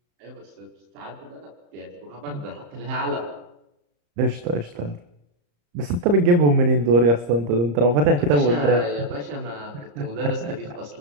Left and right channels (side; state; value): left; late; 34 ms